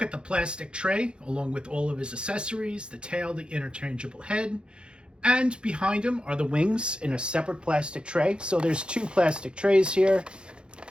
at the plastic tray along with all of his accessories, the tail, the interchangeable head. And behind him are the wings in a separate plastic tray. So there's two plastic trays here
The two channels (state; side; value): late; left; 0.053 ms